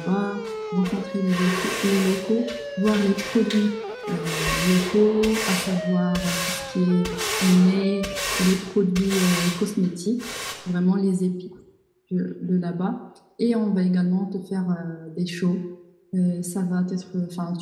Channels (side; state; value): both; identical; correlation 1.00